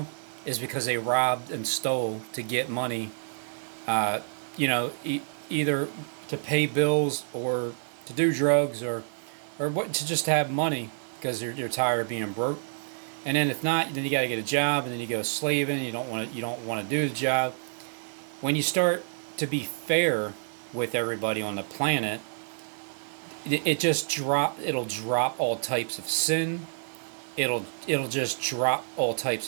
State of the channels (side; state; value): left; silent; digital silence